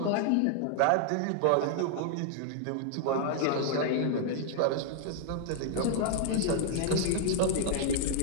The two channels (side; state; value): both; different; correlation -0.01